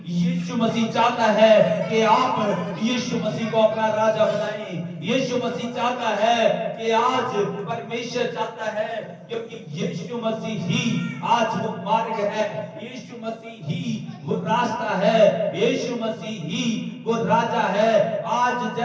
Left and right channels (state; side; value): identical; both; correlation 1.00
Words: यीशु मसीह चाहता है कि आप यीशु मसीह को अपना राजा बनाएं। यीशु मसीह चाहता है कि आज परमेश्वर चाहता है, क्योंकि यीशु मसीह ही आज वो मार्ग है, यीशु मसीह ही वो रास्ता है, यीशु मसीह ही वो राजा है। आज